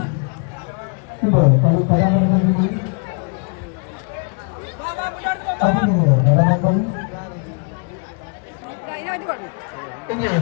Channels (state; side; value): quieter; right; 37.3 dB